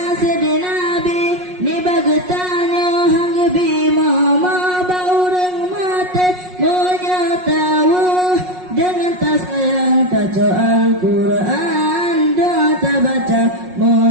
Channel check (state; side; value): late; left; 5.5 ms